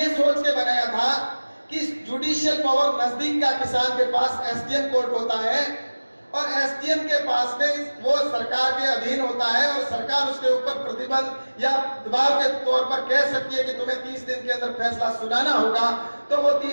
सोच के बनाया था कि जुडिशियल पावर नजदीक का किसान के पास एसडीएम कोर्ट होता है और एसडीएम के पास में वो सरकार के अधीन होता है और सरकार उसके ऊपर प्रतिबंध या दबाव के तौर पर कह सकती है कि तुम्हें 30 दिन के अंदर फैसला सुनाना होगा, तो वो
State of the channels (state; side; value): inverted; both; correlation -1.00